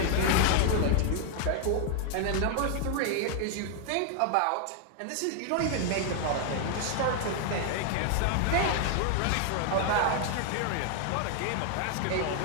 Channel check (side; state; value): both; different; correlation 0.00